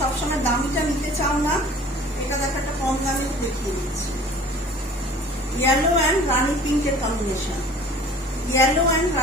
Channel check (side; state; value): both; normal; correlation 0.47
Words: দামিটা নিতে চাও না, এটা দেখো একটা কম দামে দেখিয়ে দিচ্ছি। ইয়েলো অ্যান্ড রানি পিঙ্কের কম্বিনেশন, ইয়েলো অ্যান্ড